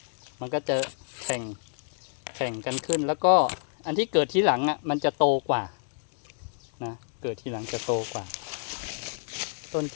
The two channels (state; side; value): silent; right; 59 dB below the other